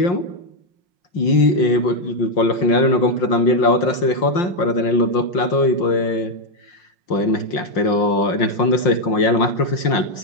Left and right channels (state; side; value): late; right; 5.7 ms